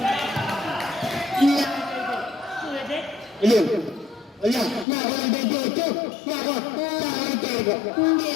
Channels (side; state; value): right; drops out; at 4.9 s